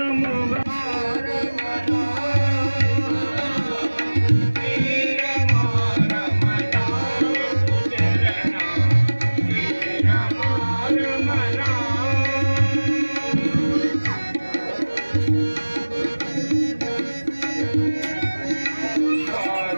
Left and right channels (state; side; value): inverted; both; correlation -1.00